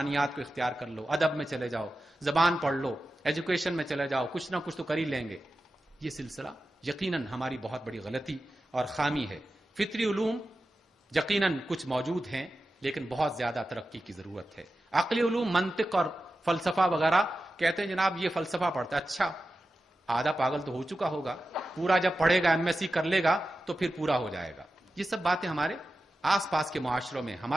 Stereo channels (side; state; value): both; normal; correlation 0.93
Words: کو اختیار کر لو، ادب میں چلے جاؤ، زبان پڑھ لو، ایجوکیشن میں چلے جاؤ، کچھ نہ کچھ تو کر ہی لیں گے. یہ سلسلہ یقیناً ہماری بہت بڑی غلطی اور خامی ہے. فطری علوم یقیناً کچھ موجود ہیں لیکن بہت زیادہ ترقی کی ضرورت ہے. عقلی علوم، منطق اور فلسفہ وغیرہ کہتے ہیں جناب یہ فلسفہ پڑھتا ہے. اچھا، آدھا پاگل تو ہو چکا ہوگا، پورا جب پڑھے گا، ایم ایس سی کر لے گا تو پھر پورا ہو جائے گا. یہ سب باتیں ہمارے آس پاس کے معاشروں میں،